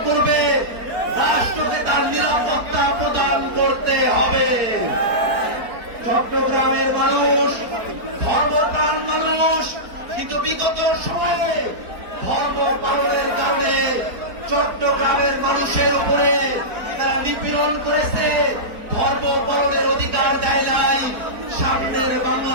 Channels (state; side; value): late; left; 4.4 ms